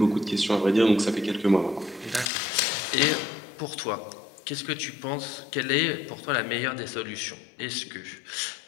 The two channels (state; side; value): drops out; right; at 2.2 s